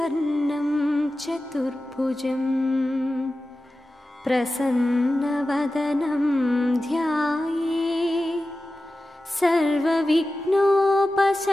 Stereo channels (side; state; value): both; normal; correlation 0.94